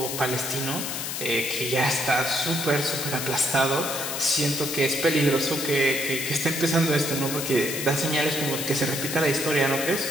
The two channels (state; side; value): noise; left; hiss, 4 dB below the sound